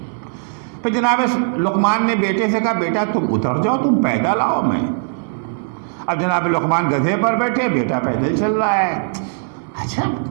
پھر جناب لقمان نے بیٹے سے کہا بیٹا تم اتر جاؤ، تم پیدل آؤ میں۔ اب جناب لقمان گدھے پر بیٹھے، بیٹا پیدل چل رہا ہے۔ اچھا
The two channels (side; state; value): left; silent; digital silence